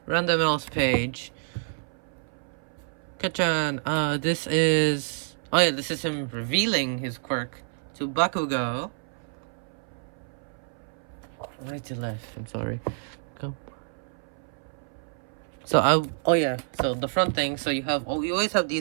Random else page. Kachan, this is him revealing his quirk to Bakugo. Right to left, I'm sorry. Go. So so the front thing, so you always have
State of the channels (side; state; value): left; silent; 59 dB below the other